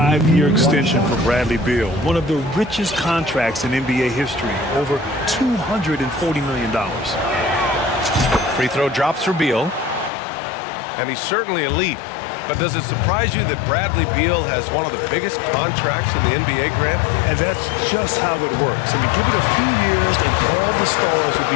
extension for Bradley Beal. One of the richest contracts in NBA history. Over $240 million. Free throw drops for Beal. And he's certainly elite. But does it surprise you that Bradley Beal has one of the biggest contracts in the NBA, Grant? And that's just how it works. I mean, give it a few years and all the stars will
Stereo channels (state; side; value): drops out; right; at 10.1 s